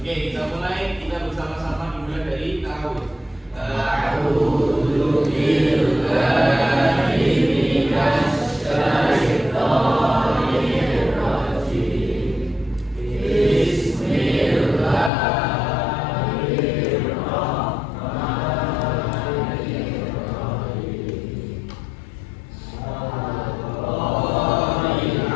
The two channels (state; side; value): drops out; right; at 15.1 s